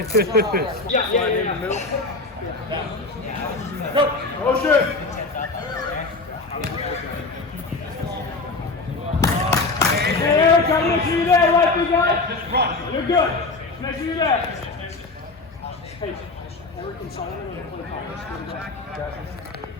Yeah, in the middle. Go! Motion! Hey, Eric, come make sure you're there, right, guy? Just run. You're good. Make sure you're there. Hey, Eric and Solomon are going to play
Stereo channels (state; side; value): quieter; right; 3.5 dB